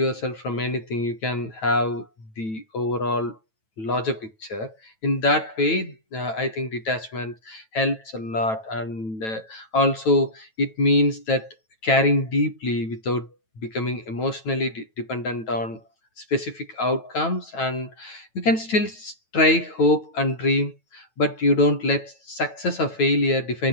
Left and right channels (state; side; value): late; right; 9.1 ms